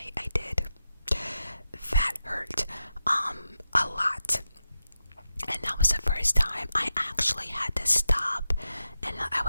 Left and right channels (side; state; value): both; inverted; correlation -0.89